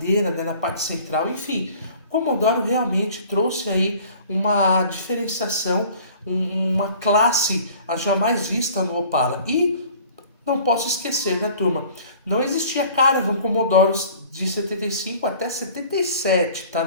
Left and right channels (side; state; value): both; inverted; correlation -0.48